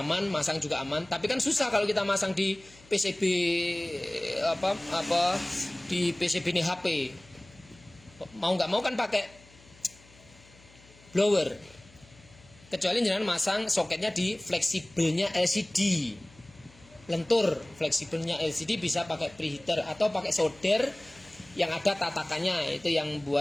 aman, masang juga aman. Tapi kan susah kalau kita masang di PCB di PCB ini HP. Mau nggak mau kan pakai blower. Kecuali jenengan masang soketnya di fleksibelnya LCD. Lentur fleksibelnya LCD bisa pakai preheater atau pakai solder yang ada tatakannya. Itu yang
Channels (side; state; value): left; noise; hum, 26 dB below the sound